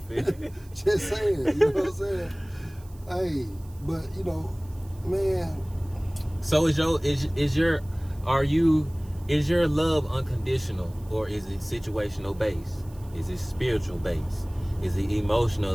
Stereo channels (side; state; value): right; noise; hiss, 26 dB below the sound